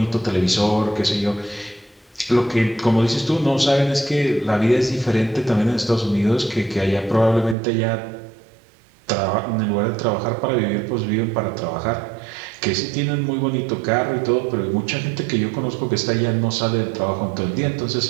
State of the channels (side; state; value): left; drops out; at 7.6 s